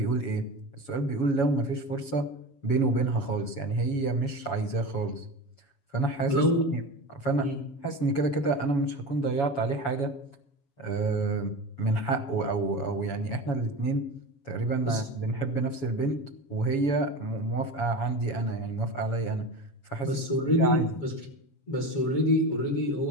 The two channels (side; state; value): right; late; 7.2 ms